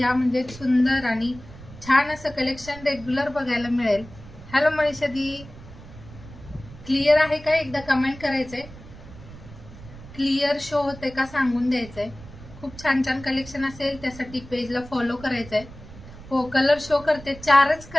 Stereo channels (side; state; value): right; noise; rumble, 17 dB below the sound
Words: म्हणजे सुंदर आणि छान असं कलेक्शन रेग्युलर बघायला मिळेल. हॅलो मनीषा दी, क्लिअर आहे का एकदा कमेंट करायचंय. क्लिअर शो होते का सांगून द्यायचंय. खूप छान छान कलेक्शन असेल त्यासाठी पेजला फॉलो करायचंय. हो, कलर शो करते. 4च